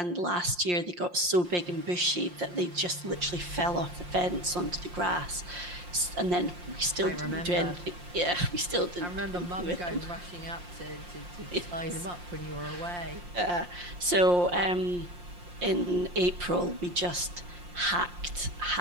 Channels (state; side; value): late; left; 5.7 ms